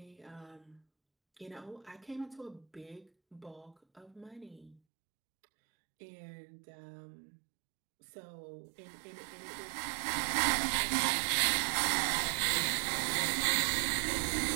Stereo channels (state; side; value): drops out; left; at 4.8 s